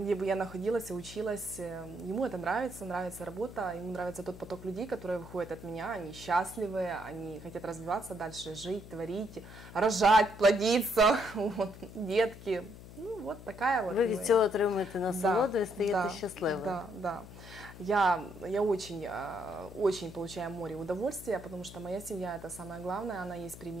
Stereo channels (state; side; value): noise; left; hum, 16 dB below the sound